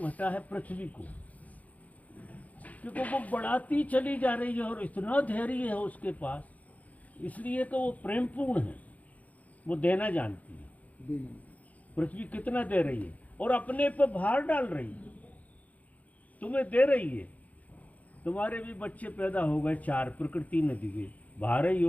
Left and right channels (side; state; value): right; late; 0.073 ms